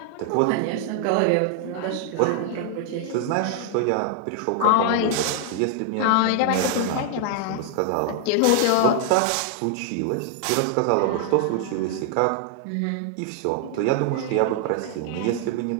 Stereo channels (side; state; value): both; different; correlation 0.00